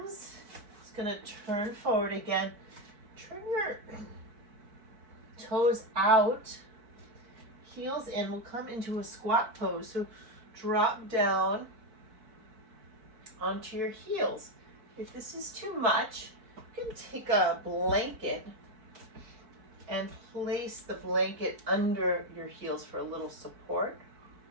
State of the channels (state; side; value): late; left; 4.6 ms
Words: It's going to turn forward again. Turn your toes out. Heels in. We'll come into a squat pose. So drop down onto your heels. If this is too much, you can take a blanket and place the blanket under your heels for a little support.